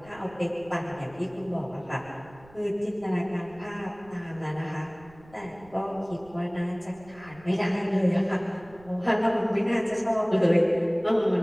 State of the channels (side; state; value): right; noise; rumble, 24 dB below the sound